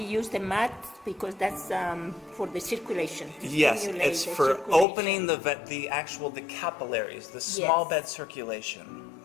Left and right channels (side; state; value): right; drops out; at 4.9 s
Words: use the mat because that's for the circulation. to Yes, stimulate it's the for circulation. opening the capillaries, the small Yes. bed circulation.